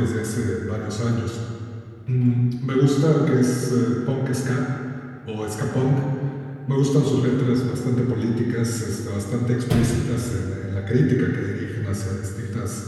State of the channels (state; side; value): identical; both; correlation 1.00